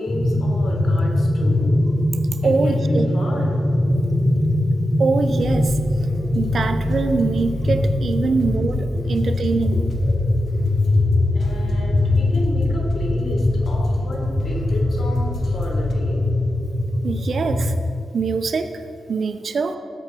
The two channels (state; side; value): normal; both; correlation 0.89